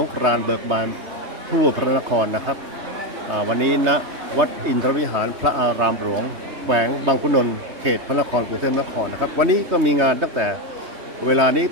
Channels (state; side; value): late; left; 3.2 ms